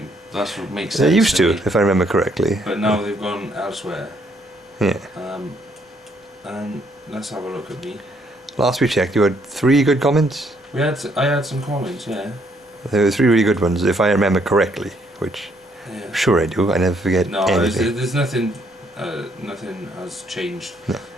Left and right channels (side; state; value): both; normal; correlation 0.69